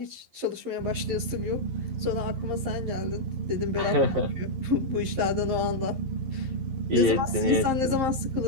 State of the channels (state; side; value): late; left; 11 ms